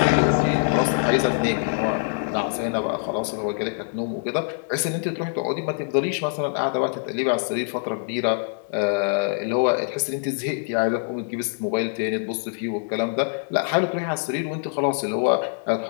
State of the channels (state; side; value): silent; right; 62 dB below the other